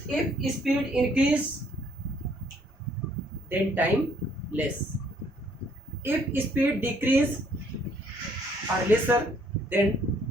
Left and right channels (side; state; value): both; normal; correlation 0.65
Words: If speed increase, then time less. If speed decrease or lesser, then